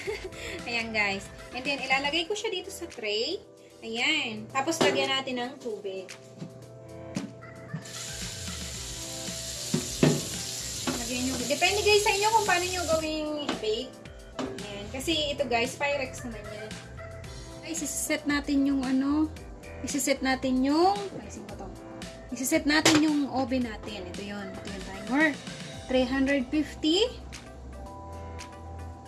Ayan guys. And then, ilalagay ko siya dito sa tray. Ayan. Tapos, lagyan natin ng tubig. Lagyan nyo. Depende guys sa inyo kung paano nyo gawing i-bake. Ayan. Kasi ito guys, Pyrex naman yan. Guys, isiset natin yung isiset natin yung isiset natin yung oven natin. Ito yun. Ito yung timer. 350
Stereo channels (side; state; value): both; identical; correlation 1.00